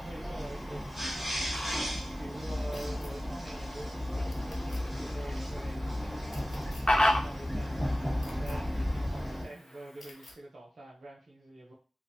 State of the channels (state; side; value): normal; both; correlation 0.96